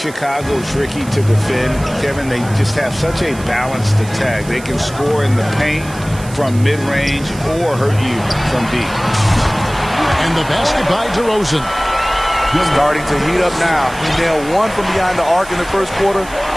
tricky to defend, Kevin, they just have such a balanced attack. They can score in the paint from mid-range or hurt you from deep. And the basket by DeRozan. Starting to heat up now. He nailed 1 from behind the arc in the first quarter,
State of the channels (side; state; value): right; noise; hiss, 18 dB below the sound